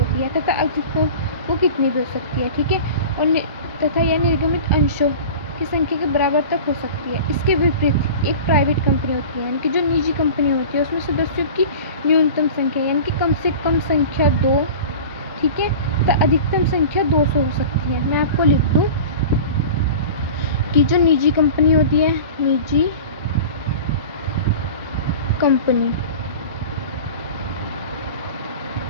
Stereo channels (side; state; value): both; inverted; correlation -0.36